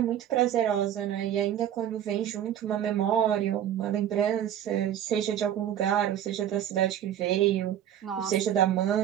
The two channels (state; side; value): quieter; left; 10.6 dB